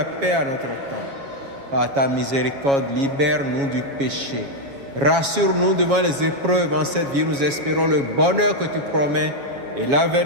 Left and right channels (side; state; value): left; late; 7.2 ms